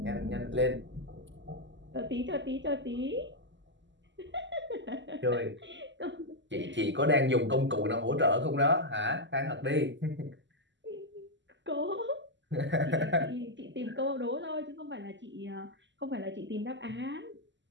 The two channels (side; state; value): left; late; 0.53 ms